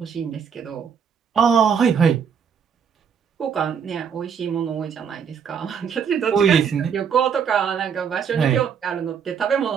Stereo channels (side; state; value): left; quieter; 7.1 dB